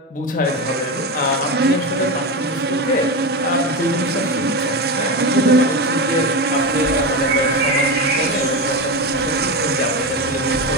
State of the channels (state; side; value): normal; both; correlation 0.18